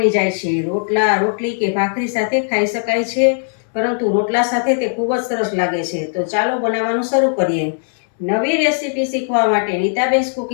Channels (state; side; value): silent; right; digital silence